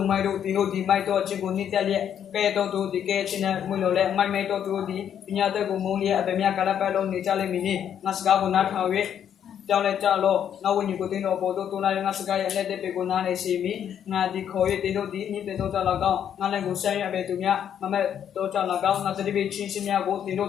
မိုက်တို့ဒီတို့ဒီမိုက်တော့အချင်းကိုနှစ်တက်လျက်ကဲတော့သူဒီကဲချင်းနဲ့မွေလို့လဲမိုက်မိုက်တော့သူတို့ဒီပညာတဲ့ကိုမုံလျက်အပမြကလပတ်လုံးနေကြလိမ့်မည်နိငါစကားကိုနားထောင်၍ကြောင်းလဲကြလို့နောက်ဝိညာဉ်ကိုတင်းတော့ပေါ်တော့တူလာငါစကားရဲ့လက်တဲ့ပေကိုနားနေစီမီငါဒီခေါ်၍တင်းတို့ဒီနိတဲ့တော့ကြလောက်ကောင်ငါလည်းကိုဆိုင်ရပဲသူများမမဲ့တော့ကြလောက်ကောင်ငါတတိပိချင်းချင်းများကိုတင်းတို့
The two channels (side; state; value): right; quieter; 9.2 dB